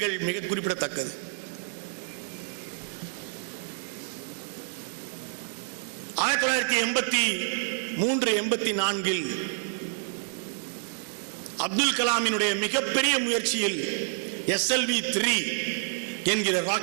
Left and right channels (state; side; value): silent; left; digital silence